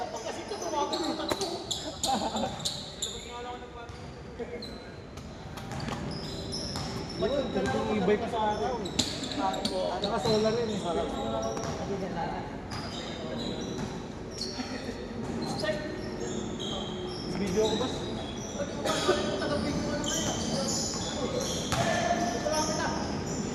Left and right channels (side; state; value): both; identical; correlation 1.00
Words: Ibay ka sa akin. Naka-solar rin eh. Video ko ba?